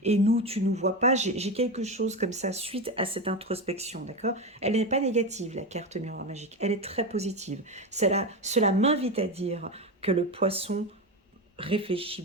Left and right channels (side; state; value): both; normal; correlation 0.18